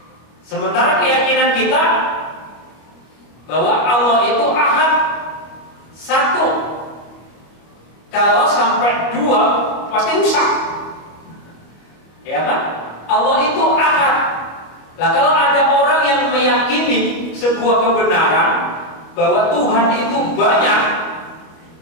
Sementara keyakinan kita bahwa Allah itu ahad, satu. Kalau sampai 2 pasti rusak. Ya kan? Allah itu ahad. Lah kalau ada orang yang meyakini sebuah kebenaran bahwa Tuhan itu banyak,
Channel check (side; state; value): right; late; 25 ms